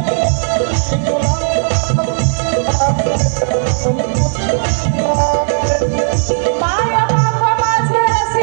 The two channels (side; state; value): left; silent; digital silence